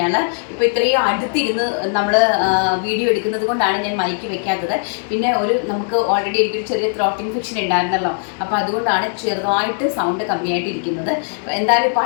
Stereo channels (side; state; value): right; silent; 67 dB below the other